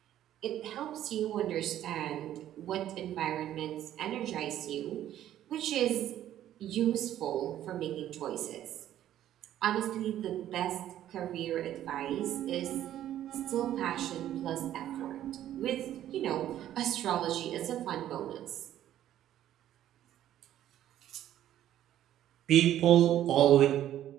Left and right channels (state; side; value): quieter; left; 12.0 dB